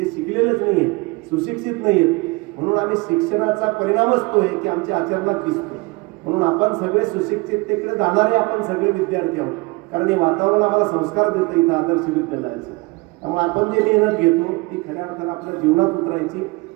शिकलेलेच नाही आहेत, सुशिक्षित नाही आहेत. म्हणून आम्ही शिक्षणाचा परिणामच तो आहे की आमच्या आचरणात दिसतो. म्हणून आपण सगळे सुशिक्षिततेकडे जाणारे आपण सगळे विद्यार्थी आहोत. कारण हे वातावरण आम्हाला संस्कार देतं इथं आदर्श विद्यालयाचं. त्यामुळे आपण जे मेहनत घेतो ती खऱ्या अर्थानं आपल्या जीवनात उतरायची.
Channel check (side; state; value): left; quieter; 25.1 dB